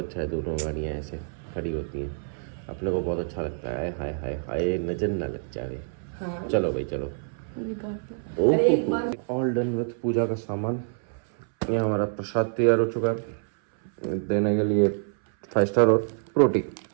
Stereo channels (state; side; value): silent; left; 60 dB below the other